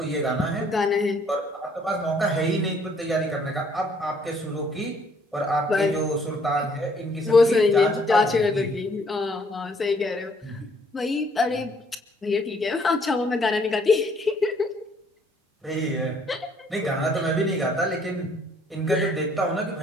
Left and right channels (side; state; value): both; normal; correlation 0.64